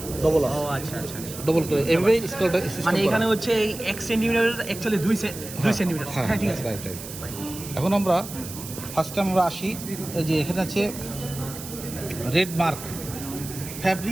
ডবল আছে। ও আচ্ছা আচ্ছা, ডবল করে এভাবে স্কেলটা মানে এখানে হচ্ছে এই 1 সেন্টিমিটার অ্যাকচুয়ালি 2 সেন্টিমিটার। হ্যাঁ, ঠিক আছে, রাইট রাইট। এখন আমরা ফার্স্ট টাইম আমরা আসি, এই যে এখানে আছে red mark,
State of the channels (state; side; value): noise; right; hiss, 11 dB below the sound